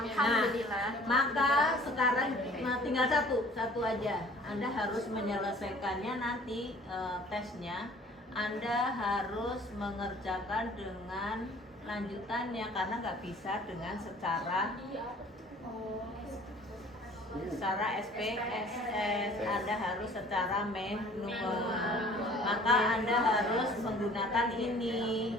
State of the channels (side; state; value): both; normal; correlation 0.51